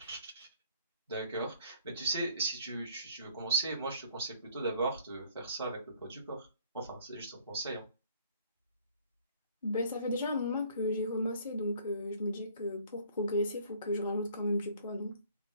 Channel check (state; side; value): inverted; both; correlation -0.58